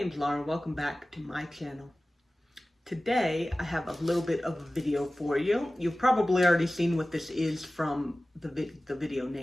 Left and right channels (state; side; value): normal; both; correlation 0.97